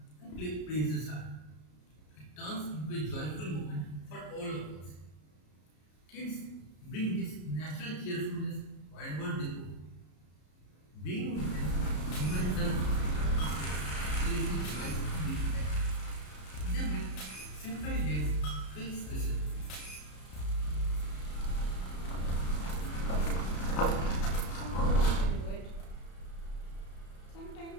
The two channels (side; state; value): right; late; 33 ms